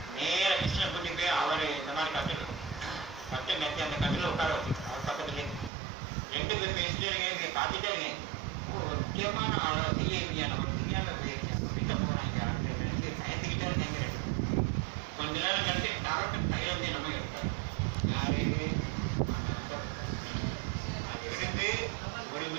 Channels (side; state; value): left; drops out; at 5.7 s